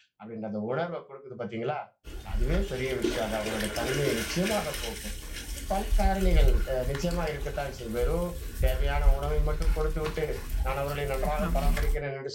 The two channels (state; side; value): identical; both; correlation 1.00